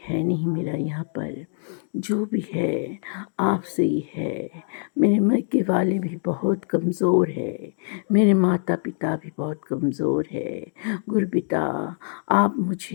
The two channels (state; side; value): silent; right; 62 dB below the other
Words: है नहीं मेरा यहाँ पर, जो भी है आपसे ही है। मेरे मायके वाले भी बहुत कमज़ोर है, मेरे माता पिता भी बहुत कमज़ोर है। गुरुपिता आप